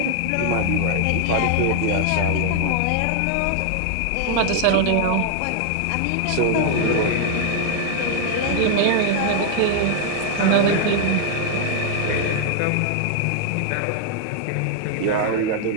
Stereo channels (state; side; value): different; both; correlation 0.00